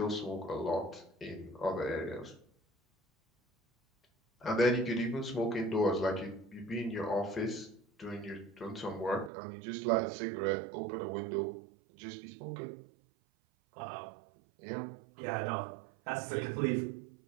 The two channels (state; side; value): drops out; left; at 9.3 s